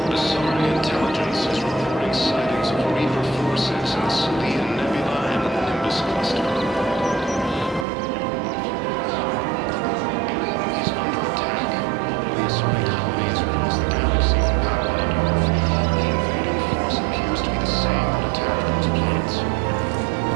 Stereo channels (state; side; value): drops out; left; at 7.9 s